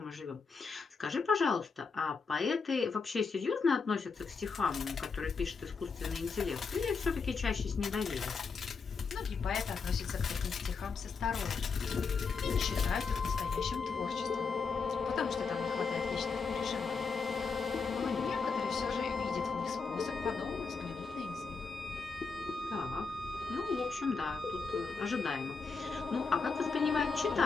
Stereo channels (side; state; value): right; quieter; 4.9 dB